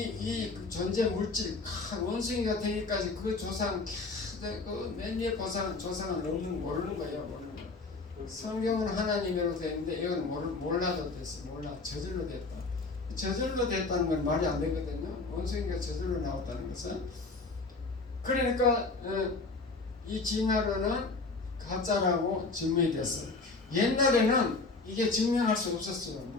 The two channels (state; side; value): quieter; right; 3.8 dB